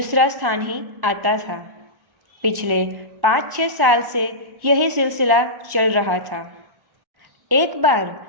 स्थान ही आता था। पिछले 5-6 साल से यही सिलसिला चल रहा था। एक बार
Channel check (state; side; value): late; left; 1.1 ms